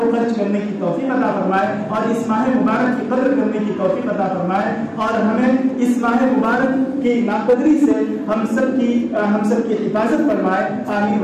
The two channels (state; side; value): identical; both; correlation 1.00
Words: خرچ کرنے کی توفیق عطا فرمائے اور اس ماہ مبارک کی قدر کرنے کی توفیق عطا فرمائے، اور ہمیں اس ماہ مبارک کی ناقدری سے ہم سب کی حفاظت فرمائے۔ آمین